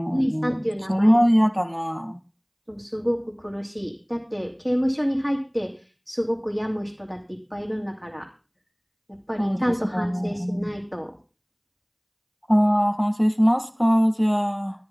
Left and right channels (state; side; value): identical; both; correlation 1.00